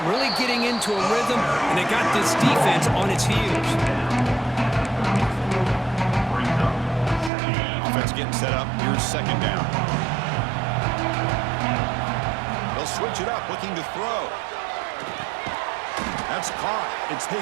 really getting into a rhythm, and they got this defense on its heels. Offense getting set up. Here's second down. They'll switch it up, looking to throw. That's caught. It's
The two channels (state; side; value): drops out; left; at 7.3 s